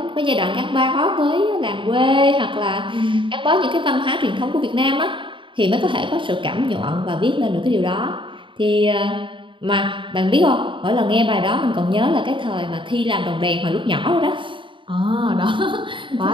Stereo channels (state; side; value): late; left; 0.24 ms